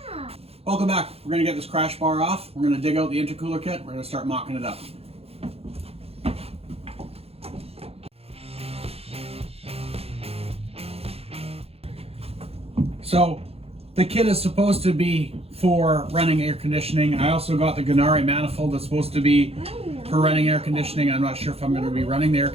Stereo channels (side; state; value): left; late; 0.29 ms